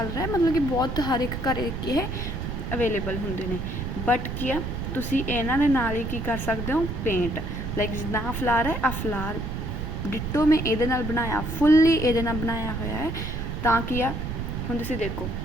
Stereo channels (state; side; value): noise; right; rumble, 4 dB below the sound